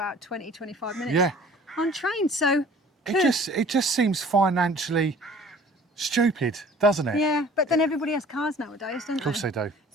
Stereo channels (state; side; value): normal; both; correlation 0.50